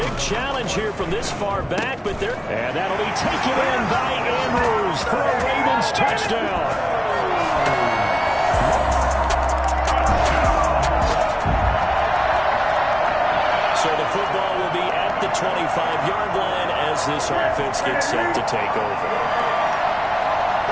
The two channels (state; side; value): identical; both; correlation 1.00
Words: challenge here from this far back, but they're... And that'll be taken in by Andrews for a Ravens touchdown. So the football will be at the 25-yard line as this offense gets set to take over.